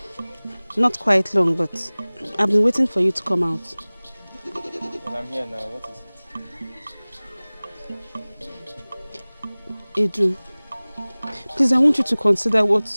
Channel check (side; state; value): both; inverted; correlation -1.00